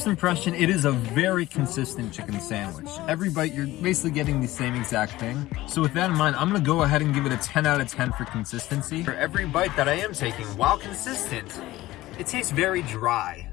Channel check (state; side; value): quieter; right; 17.1 dB